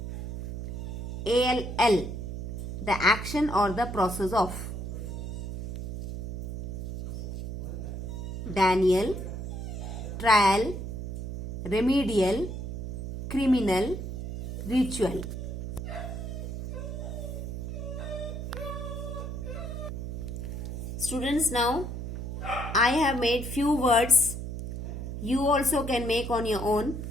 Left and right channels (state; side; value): noise; right; hum, 6 dB below the sound